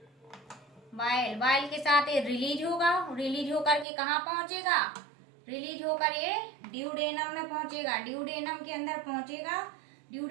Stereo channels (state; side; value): drops out; left; at 3.9 s